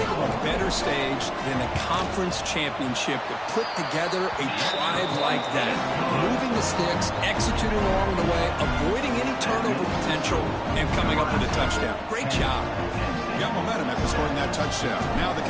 of a better stage than a conference championship to put together a drive like that. Moving the sticks, executing along the way, avoiding any turnover potential, and coming up with a touchdown. Great job. Got momentum after scoring that touchdown. Now the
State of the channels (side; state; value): both; identical; correlation 1.00